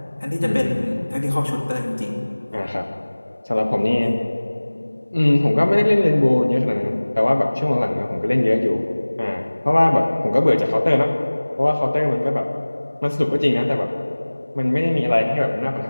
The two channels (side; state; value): both; inverted; correlation -1.00